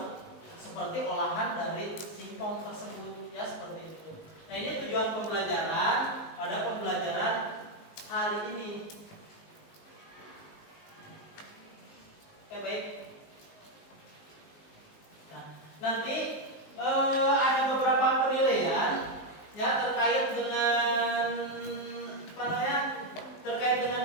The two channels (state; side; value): late; right; 19 ms